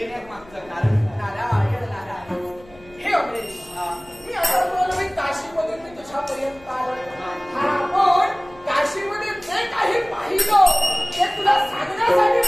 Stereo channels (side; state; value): left; noise; hum, 24 dB below the sound